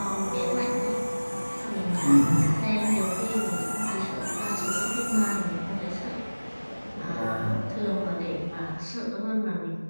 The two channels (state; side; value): inverted; both; correlation -1.00